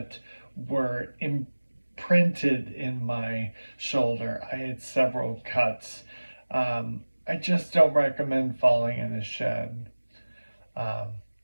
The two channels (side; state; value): both; inverted; correlation -1.00